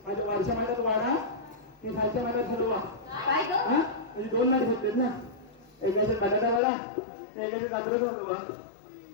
माझ्या वरच्या महिन्यात वाडा मी खालच्या महिन्यात ठरवा म्हणजे 2 नाट घेतलेत ना एकाचे बटाटा वाडा एकाचे कात्रच होतो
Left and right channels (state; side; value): drops out; right; at 6.6 s